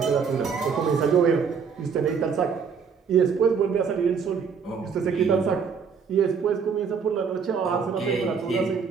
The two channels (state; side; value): quieter; left; 6.2 dB